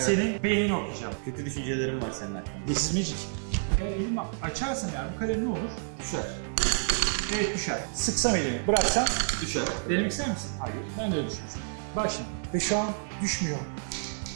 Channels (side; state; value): left; silent; digital silence